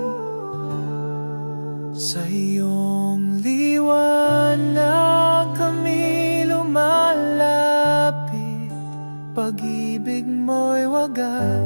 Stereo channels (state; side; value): inverted; both; correlation -1.00